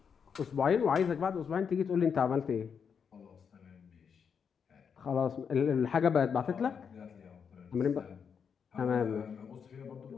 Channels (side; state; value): right; quieter; 6.7 dB